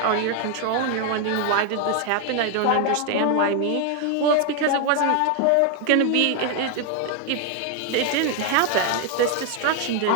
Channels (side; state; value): both; different; correlation 0.01